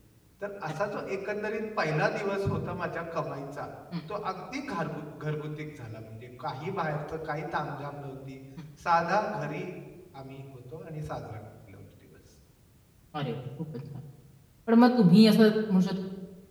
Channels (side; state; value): both; identical; correlation 1.00